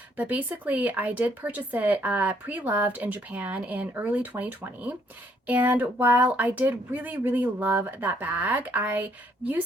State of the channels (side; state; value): both; normal; correlation 0.68